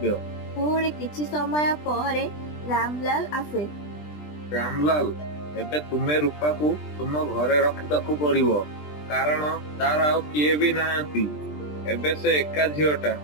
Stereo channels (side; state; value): right; late; 20 ms